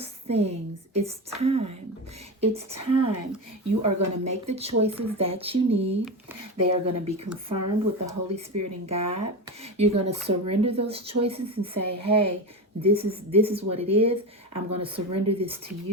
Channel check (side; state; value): both; normal; correlation 0.21